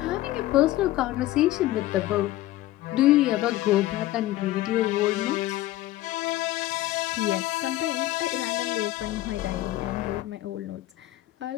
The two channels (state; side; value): quieter; right; 15.7 dB